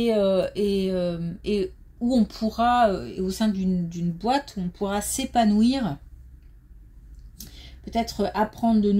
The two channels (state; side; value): identical; both; correlation 1.00